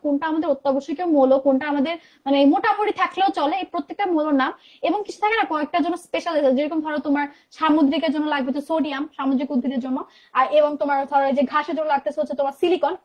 কোনটা আমাদের অত্যাবশ্যকীয় মৌল, কোনটা আমাদের মানে মোটামুটি থাকলেও চলে, এই প্রত্যেকটা মৌলের নাম, এবং কিছু থাকে না কয়েকটার জন্য স্পেশাল, যেরকম ধরো তোমার সামুদ্রিকের জন্য লাগবে তো সোডিয়াম, সামুদ্রিক উদ্ভিদের জন্য, আর এবং তোমার ধরো যে ঘাসের জন্য লাগতেছে হচ্ছে তোমার সিলিকন,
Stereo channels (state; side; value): identical; both; correlation 1.00